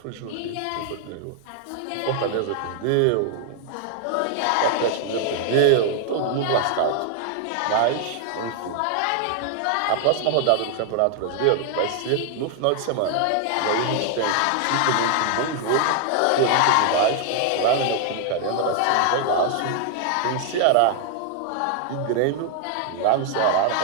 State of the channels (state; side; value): different; both; correlation 0.00